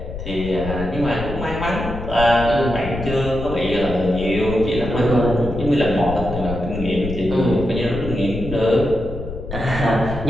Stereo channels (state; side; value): noise; left; rumble, 8 dB below the sound